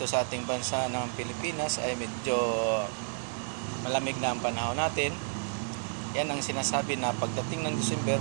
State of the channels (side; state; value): left; silent; 57 dB below the other